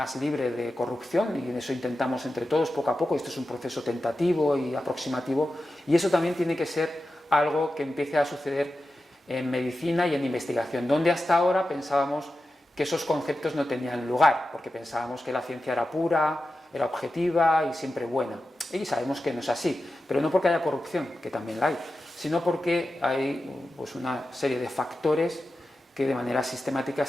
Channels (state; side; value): normal; both; correlation 0.92